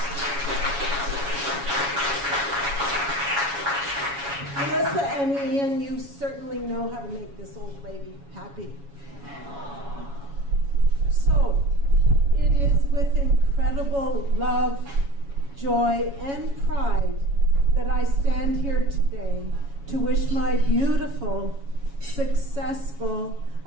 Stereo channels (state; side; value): late; left; 7.2 ms